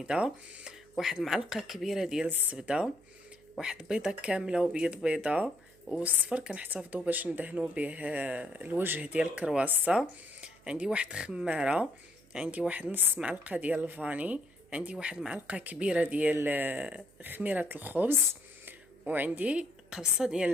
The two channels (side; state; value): right; noise; hum, 29 dB below the sound